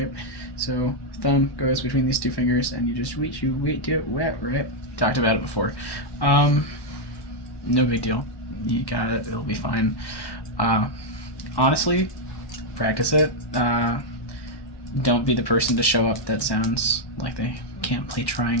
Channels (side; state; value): right; late; 1.1 ms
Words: So thumb goes between these two fingers, and you just do it wet, right? Talked about it before. No big deal. You got it. It'll be fine. Honestly, practice it. Don't be the person to show up that sounds like they can't play